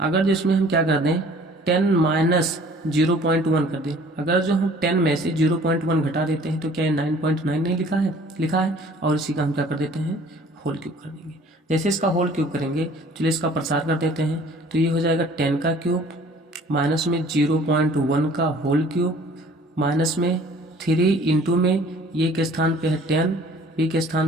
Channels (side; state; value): both; normal; correlation 0.52